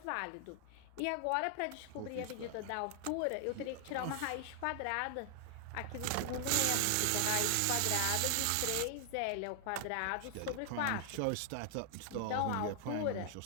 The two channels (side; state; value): both; different; correlation 0.00